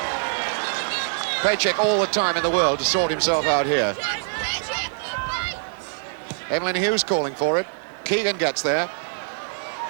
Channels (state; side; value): silent; left; digital silence